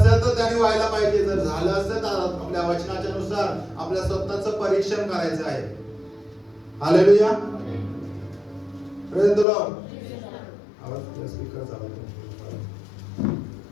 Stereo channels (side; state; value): right; drops out; at 9.5 s